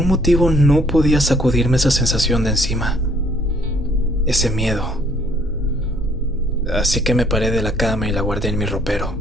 motivo no podía sacudirme esa sensación de encima, ese miedo. Así que me paré de la cama y la guardé en mi ropero.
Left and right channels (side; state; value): both; normal; correlation 0.63